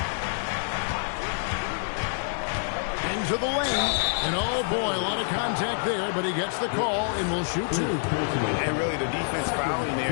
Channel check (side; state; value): right; silent; digital silence